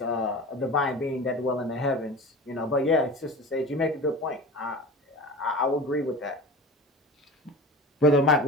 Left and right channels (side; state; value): both; normal; correlation 0.34